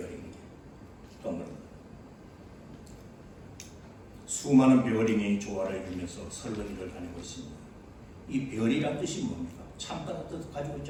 동그랗게 수많은 베어링이 조화를 이루면서 설렁이를 다니고 있습니다. 이 베어링이란 뜻이 뭡니까? 참다는 뜻을 가지고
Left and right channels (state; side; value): identical; both; correlation 1.00